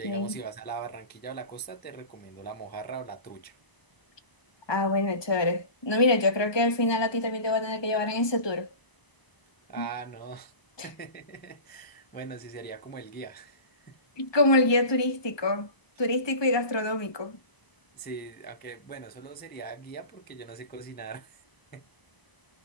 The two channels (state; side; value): late; right; 1.2 ms